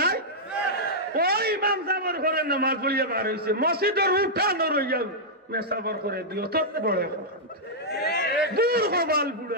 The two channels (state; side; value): normal; both; correlation -0.09